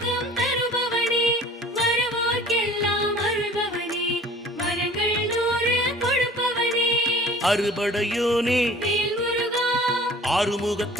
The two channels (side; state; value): both; normal; correlation 0.47